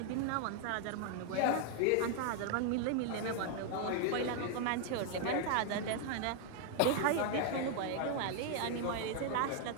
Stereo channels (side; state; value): both; different; correlation 0.00